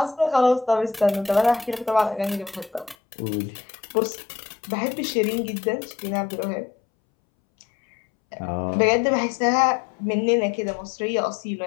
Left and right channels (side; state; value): right; drops out; at 3.0 s